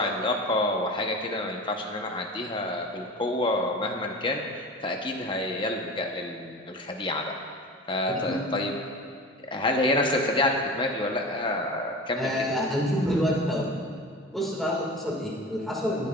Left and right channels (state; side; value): normal; both; correlation 0.33